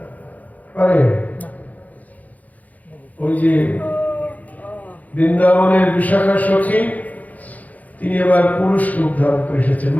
পারে? ওই যে বৃন্দাবনের বিশাখা সখী, তিনি এবার পুরুষ রূপ ধারণ করে এসেছেন,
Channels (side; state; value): right; late; 0.077 ms